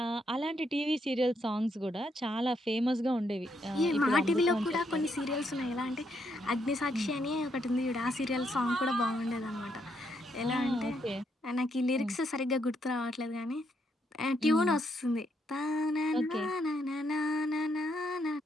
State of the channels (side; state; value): both; normal; correlation 0.76